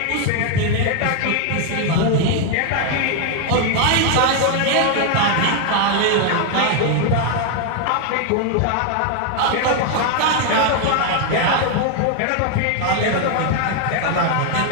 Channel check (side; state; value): both; different; correlation 0.00